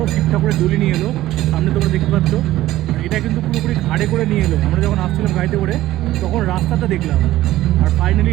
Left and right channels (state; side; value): quieter; left; 15.2 dB